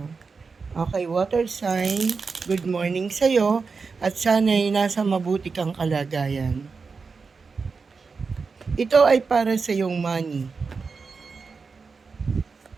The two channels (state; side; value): quieter; left; 4.8 dB